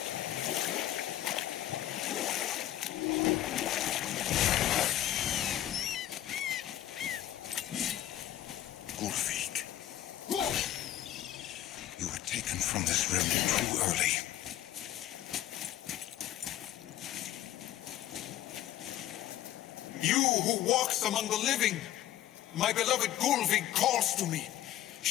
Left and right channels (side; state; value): right; quieter; 12.9 dB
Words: Ulfik. You were taken from this realm too early. You who walks among the living, my beloved Gulvig calls to me.